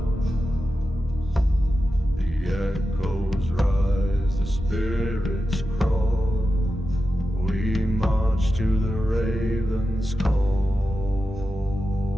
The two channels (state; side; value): normal; both; correlation 0.91